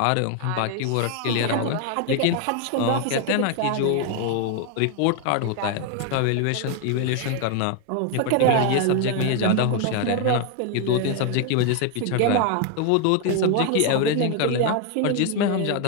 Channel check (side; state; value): both; different; correlation 0.01